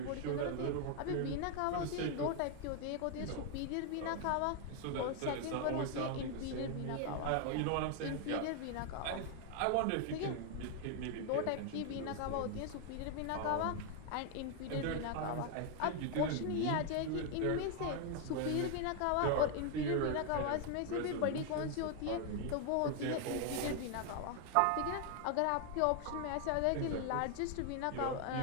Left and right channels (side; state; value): both; different; correlation 0.00